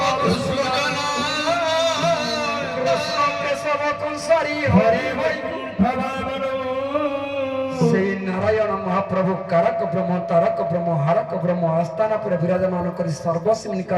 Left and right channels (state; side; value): identical; both; correlation 1.00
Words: କୃଷ୍ଣ କେଶବ କଂସାରୀ ହରି ବୈକୁଣ୍ଠ ଭାବନ ସେଇ ନାରାୟଣ ମହାପ୍ରଭୁ କାରକ ବ୍ରହ୍ମ, ତାରକ ବ୍ରହ୍ମ, ହାରକ ବ୍ରହ୍ମ ଆସ୍ଥାନ ପରେ ବିରାଜମାନ କରି ସର୍ବସିମ୍ନି